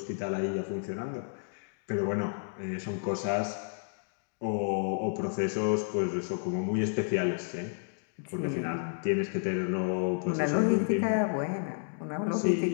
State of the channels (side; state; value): right; silent; digital silence